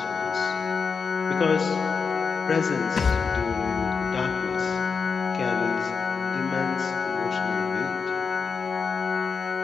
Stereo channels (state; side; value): quieter; right; 5.4 dB